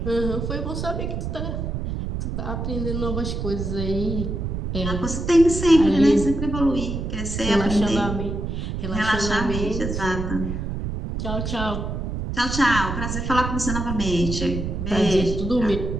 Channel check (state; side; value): noise; right; rumble, 3 dB below the sound